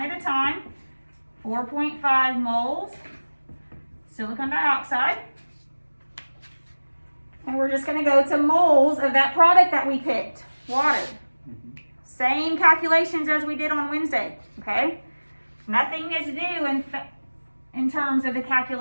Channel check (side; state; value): both; inverted; correlation -1.00